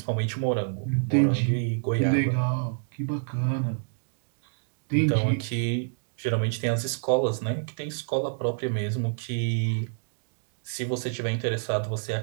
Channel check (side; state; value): left; silent; digital silence